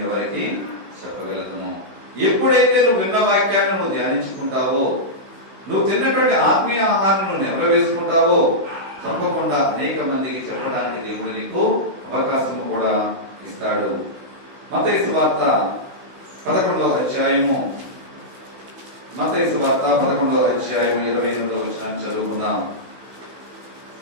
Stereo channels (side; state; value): left; late; 16 ms